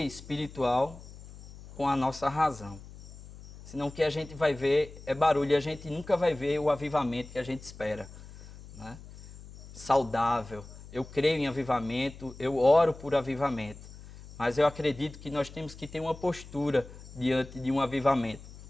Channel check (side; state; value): left; noise; hum, 17 dB below the sound